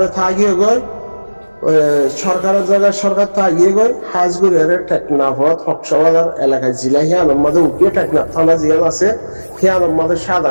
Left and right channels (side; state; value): both; inverted; correlation -1.00